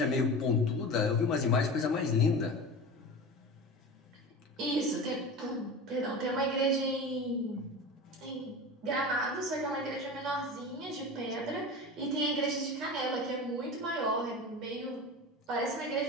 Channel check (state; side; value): normal; both; correlation 0.30